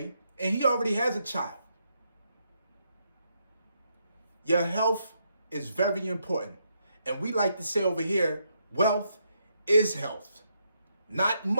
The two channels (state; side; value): inverted; both; correlation -0.78